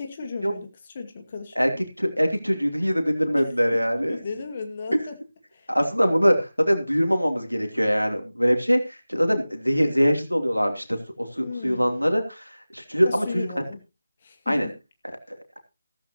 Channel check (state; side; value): inverted; both; correlation -0.98